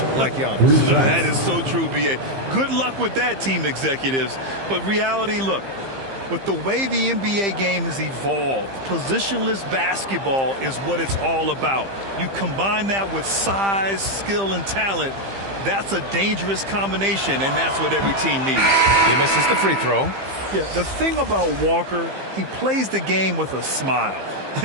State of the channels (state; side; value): late; left; 15 ms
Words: like Giannis. That is so true, B.A. Good luck with that, team executives. But reality, look, with the way the NBA game has evolved, positionless basketball is what it's all about. You combine that with size, skill, and talent. That's a dangerous combination, and that's what every team needs. He misses the free throw. Yeah, the thing about Walker, he plays the game with a smile.